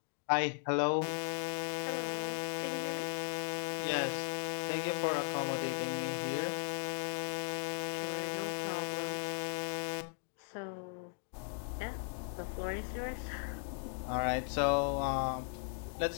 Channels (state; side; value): silent; right; digital silence